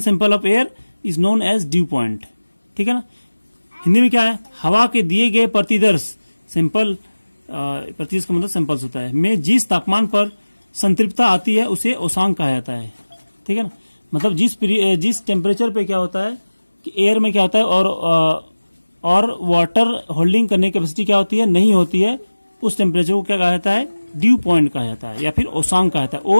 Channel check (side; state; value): both; inverted; correlation -1.00